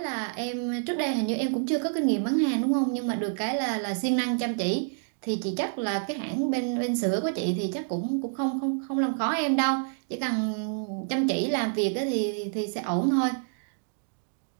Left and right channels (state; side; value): silent; left; digital silence